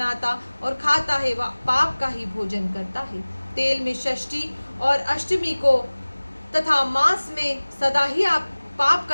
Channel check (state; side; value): inverted; both; correlation -1.00